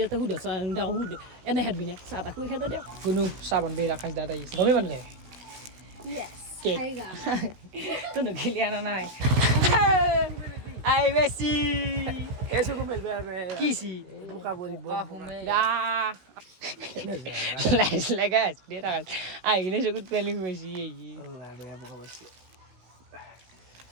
এটা সুধ চাহ সুধ এনে খেদবি নে চাহ তাহ শুৱে খেদ দিয়ক কোনো চাহ বনবি ৰাকেশ দাদা আহিছে গমেই মানে যায় কেক তো নগিলি আনা নাই আই বেছি এসো মেলবে আমি কিছি বুকা বলি লাইস লাগাস দে রাখাস আইনে সকুত প্ল্যানিং হইছি এই আল্লাহ বেয়া বুকা বসি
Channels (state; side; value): late; left; 16 ms